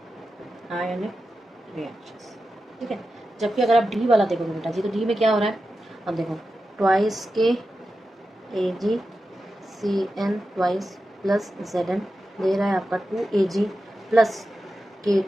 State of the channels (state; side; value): normal; both; correlation 0.91